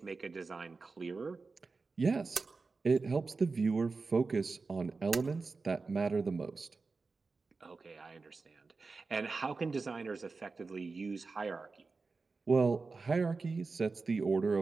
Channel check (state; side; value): quieter; left; 4.1 dB